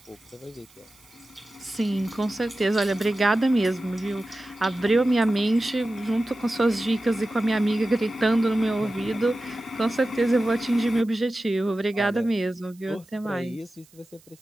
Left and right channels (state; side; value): noise; right; hiss, 28 dB below the sound